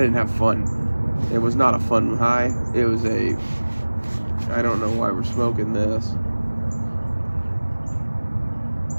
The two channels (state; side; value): inverted; both; correlation -1.00